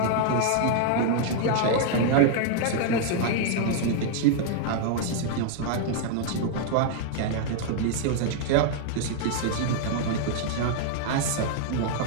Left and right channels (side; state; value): both; different; correlation 0.00